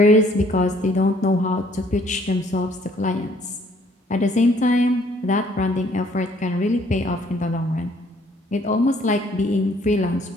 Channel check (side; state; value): both; normal; correlation 0.62